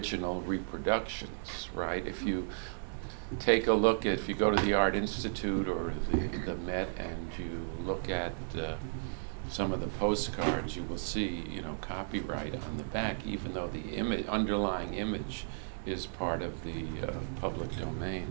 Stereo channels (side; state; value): left; silent; digital silence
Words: reproductions, right? If you take a look if you go to the Art Institute or the Met and you look at some of the postcards, you will see, copyright on the back, even though the underlying image is part of the public domain.